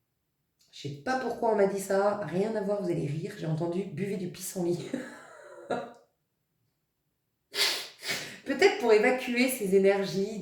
Je sais pas pourquoi on m'a dit ça, rien à voir, vous allez rire. J'ai entendu buvez du pissenlit. Peut-être pour évacuer ces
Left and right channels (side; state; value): both; identical; correlation 1.00